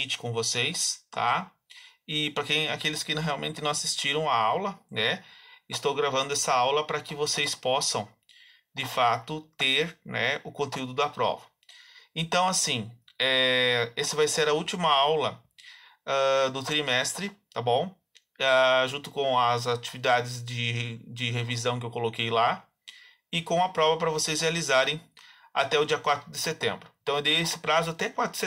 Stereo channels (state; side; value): identical; both; correlation 1.00